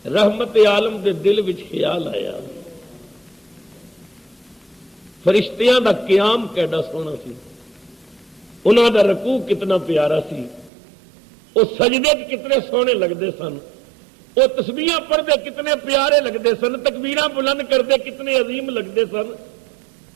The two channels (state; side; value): drops out; left; at 10.7 s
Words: رحمت عالم دے دل وچ خیال آیا فرشتیاں دا قیام کیڈا سونا سی، انہاں دا رکوع کتنا پیارا سی، وہ سجدے کتنے سونے لگتے سن، وہ تسبیحاں پڑھتے کتنے پیارے لگتے سن، تکبیراں بلند کرتے کتنے عظیم لگتے سن۔